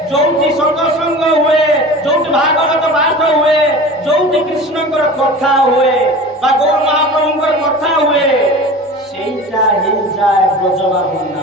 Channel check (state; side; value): normal; both; correlation 0.36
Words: ଯୋଉଠି ସତ୍ସଙ୍ଗ ହୁଏ, ଯୋଉଠି ଭାଗବତ ପାଠ ହୁଏ, ଯୋଉଠି କୃଷ୍ଣଙ୍କର କଥା ହୁଏ ବା ଗୌର ମହାପ୍ରଭୁଙ୍କର କଥା ହୁଏ, ସେଇଟା ହେଇଯାଏ ବ୍ରଜବା